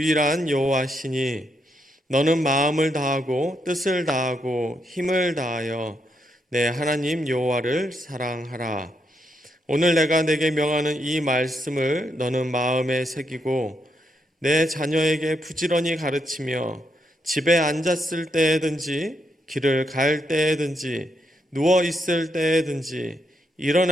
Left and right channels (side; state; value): both; normal; correlation 0.79